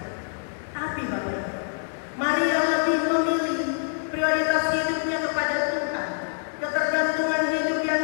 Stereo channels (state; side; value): silent; right; digital silence